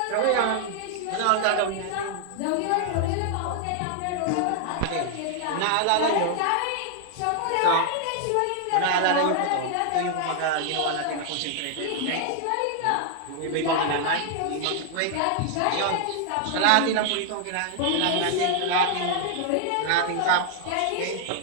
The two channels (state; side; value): different; both; correlation 0.00